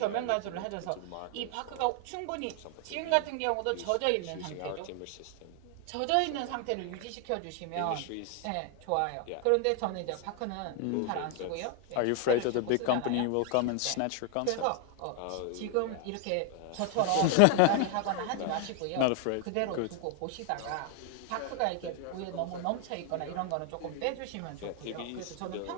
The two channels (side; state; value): both; different; correlation 0.00